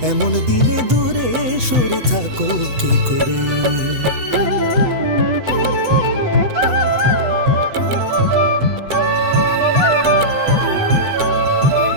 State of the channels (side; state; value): left; late; 8.1 ms